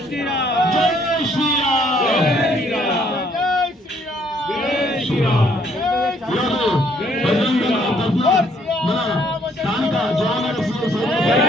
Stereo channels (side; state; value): both; normal; correlation 0.66